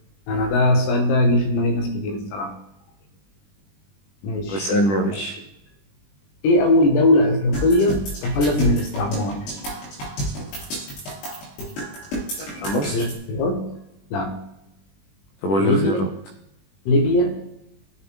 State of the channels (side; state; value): right; late; 20 ms